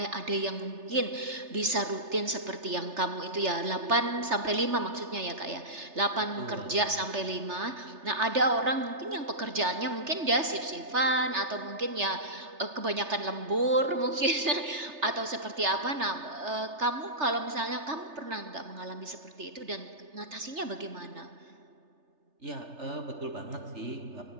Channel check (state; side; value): late; left; 3.3 ms